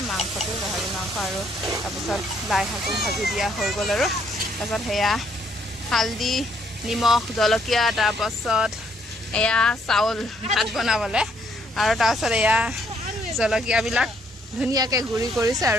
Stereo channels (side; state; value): both; normal; correlation 0.69